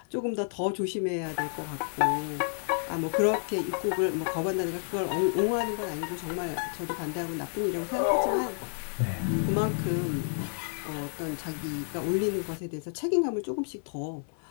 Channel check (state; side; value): silent; right; 58 dB below the other